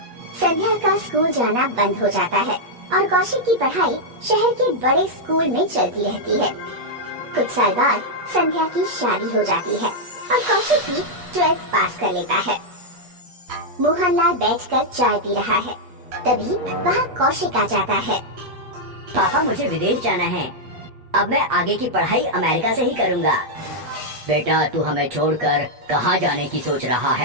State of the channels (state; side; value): late; left; 8.4 ms